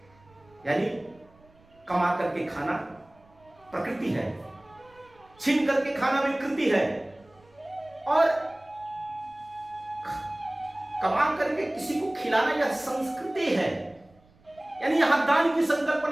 यानी कमा करके खाना प्रकृति है, छीन करके खाना विकृति है, और कमा करके किसी को खिलाना यह संस्कृति है। यानी यहां दान की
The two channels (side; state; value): right; noise; rumble, 30 dB below the sound